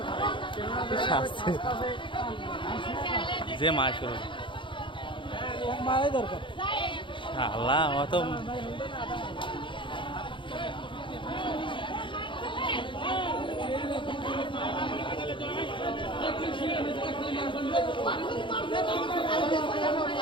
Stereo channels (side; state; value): right; late; 0.24 ms